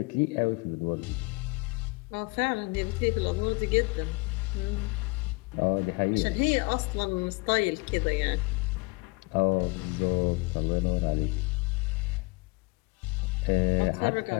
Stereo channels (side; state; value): right; quieter; 27.1 dB